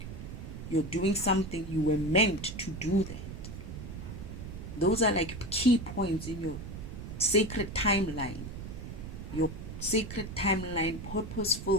You're doing something, you were meant to do that. Those are like key points in your sacred timeline, your sacred timeline,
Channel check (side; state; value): right; noise; rumble, 9 dB below the sound